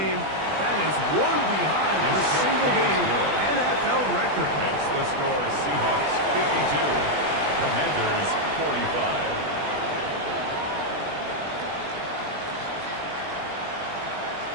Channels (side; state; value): left; late; 20 ms